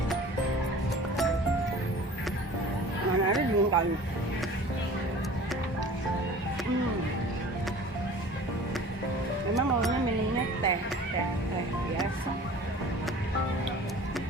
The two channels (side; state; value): both; normal; correlation 0.43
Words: Mana ada dingin kali. Memang maunya minumnya teh biasa.